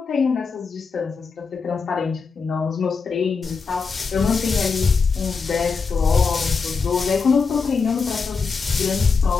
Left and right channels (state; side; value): quieter; right; 5.0 dB